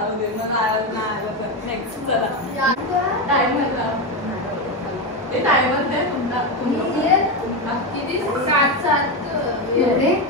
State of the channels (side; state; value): both; normal; correlation 0.12